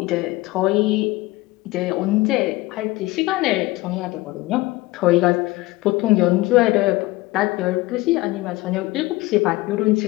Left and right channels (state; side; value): quieter; right; 19.8 dB